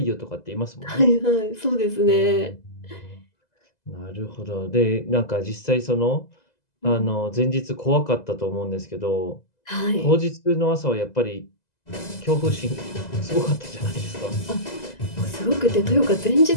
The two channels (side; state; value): right; late; 2.0 ms